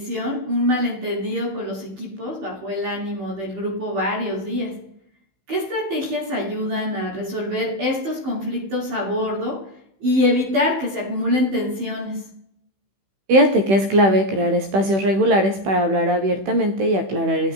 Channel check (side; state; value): left; late; 15 ms